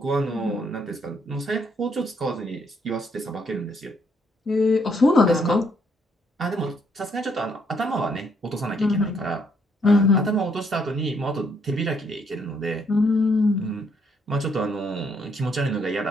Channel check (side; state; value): both; normal; correlation 0.71